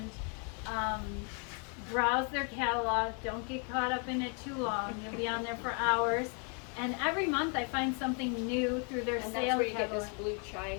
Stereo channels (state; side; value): quieter; right; 39.0 dB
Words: browse their catalog. Don't get caught up in it too long. You'll be on there for hours. And every month I find something new through their And sale that's where you get catalog. this blue chai